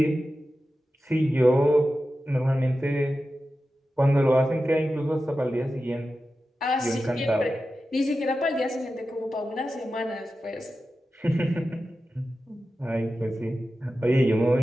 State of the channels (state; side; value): normal; both; correlation 0.93